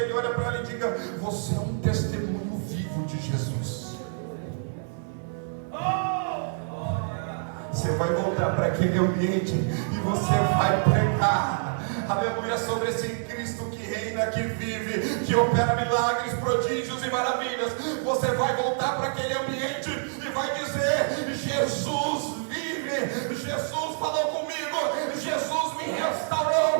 ele, olha para ela e diga: você é um testemunho vivo de Jesus. Você vai voltar para aquele ambiente e você vai pregar, aleluia, sobre esse Cristo que reina, que vive, que opera milagres, prodígios e maravilhas. Você vai voltar para aquele ambiente e vai dizer: Jesus vive, Jesus falou comigo, Jesus me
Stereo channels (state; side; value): silent; left; digital silence